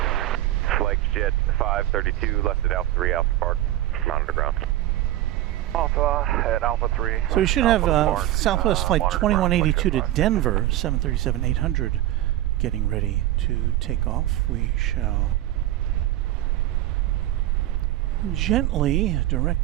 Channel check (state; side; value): quieter; left; 14.5 dB